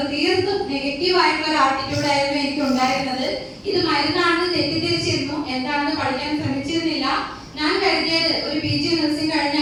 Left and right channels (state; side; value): identical; both; correlation 1.00